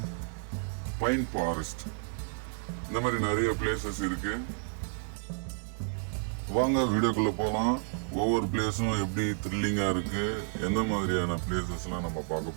pine forest, இந்த மாதிரி நிறைய பிளேசஸ் இருக்கு. வாங்க வீடியோக்குள்ள போகலாம். ஒவ்வொரு பிளேஸும் எப்படி த்ரில்லிங்கா இருக்கு, எந்த மாதிரியான பிளேசஸ்லாம் நம்ம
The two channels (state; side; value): silent; left; 57 dB below the other